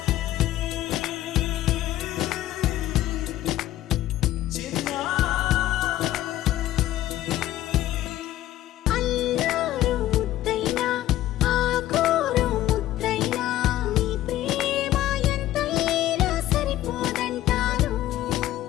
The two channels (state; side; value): quieter; right; 14.0 dB